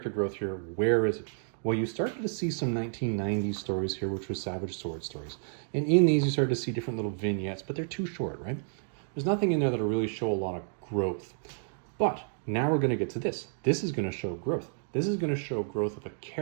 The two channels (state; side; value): silent; left; digital silence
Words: growth here, where is it? Well, you started to see some 1990s stories here, which were Savage Sword stories. And in these, you started to see different little vignettes, but they're too short, right? There's nothing in there that'll really show a lot of growth. But now we're going to get to this. This is going to show growth. This is going to show growth of a